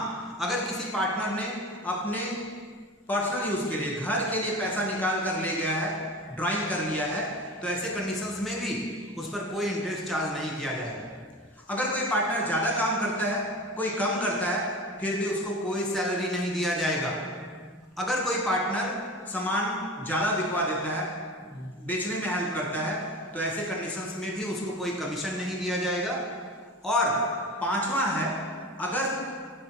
अगर किसी पार्टनर ने अपने पर्सनल यूज के लिए, घर के लिए पैसा निकाल कर ले गया है, ड्राइंग कर लिया है, तो ऐसे कंडीशंस में भी उस पर कोई इंटरेस्ट चार्ज नहीं किया जाएगा। अगर कोई पार्टनर ज्यादा काम करता है, कोई कम करता है, फिर भी उसको कोई सैलरी नहीं दिया जाएगा। अगर कोई पार्टनर सामान ज्यादा बिकवा देता है, बेचने में हेल्प करता है, तो ऐसे कंडीशंस में भी उसको कोई कमीशन नहीं दिया जाएगा। और पांचवा है, अगर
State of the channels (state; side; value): normal; both; correlation 0.32